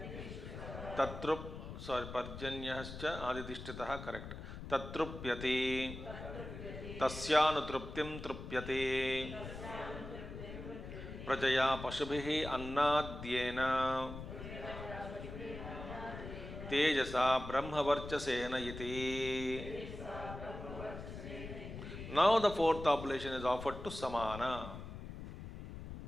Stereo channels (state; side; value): noise; left; rumble, 10 dB below the sound